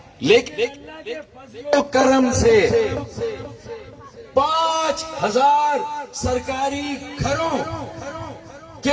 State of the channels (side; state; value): both; identical; correlation 1.00